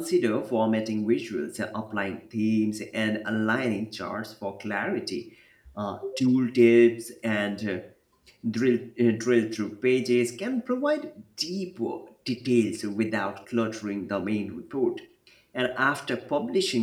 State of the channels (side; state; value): both; identical; correlation 1.00